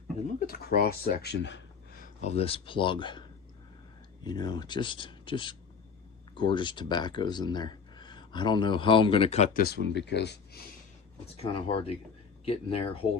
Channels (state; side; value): quieter; right; 6.0 dB